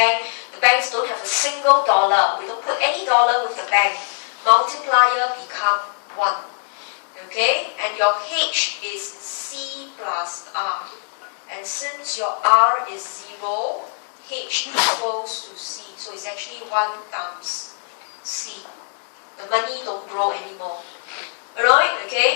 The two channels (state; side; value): silent; right; 55 dB below the other